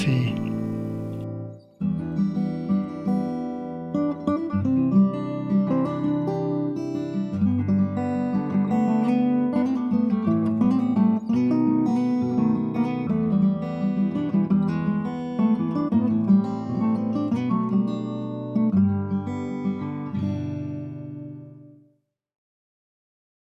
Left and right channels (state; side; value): identical; both; correlation 1.00